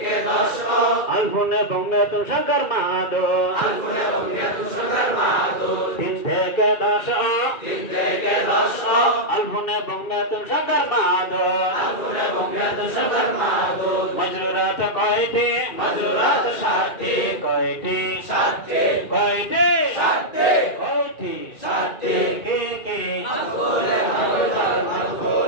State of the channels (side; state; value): right; late; 2.4 ms